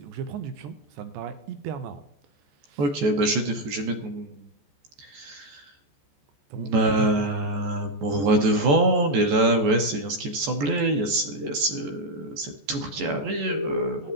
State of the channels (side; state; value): left; late; 14 ms